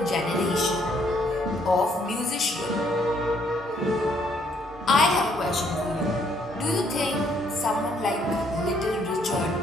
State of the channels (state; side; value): normal; both; correlation 0.68